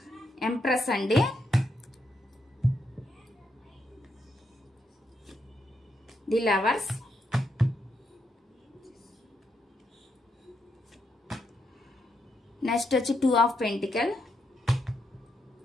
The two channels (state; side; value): normal; both; correlation 0.80